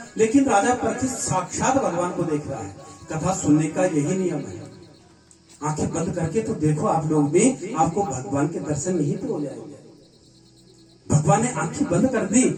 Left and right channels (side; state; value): both; identical; correlation 1.00